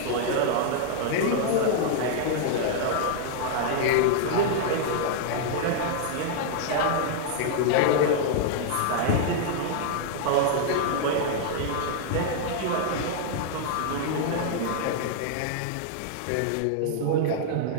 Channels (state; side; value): different; both; correlation -0.01